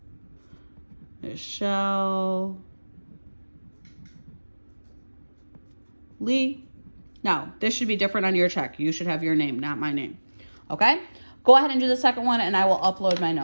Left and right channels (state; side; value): inverted; both; correlation -1.00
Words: Michelle Lee. Now, this should be different on your check. You should have your name, not my name. Okay? Go ahead and do the second one, and I will upload my